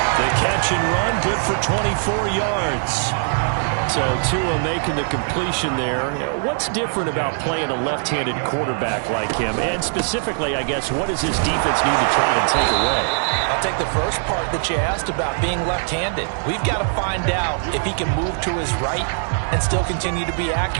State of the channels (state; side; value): silent; left; digital silence